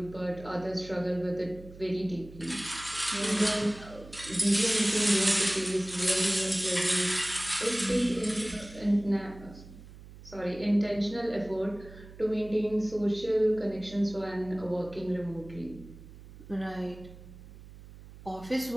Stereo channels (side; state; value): right; noise; hum, 17 dB below the sound